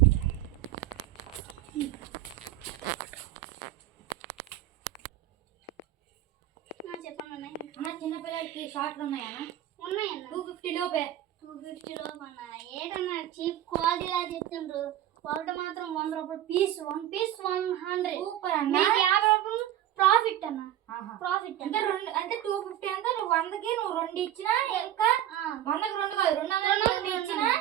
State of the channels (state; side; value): quieter; left; 12.2 dB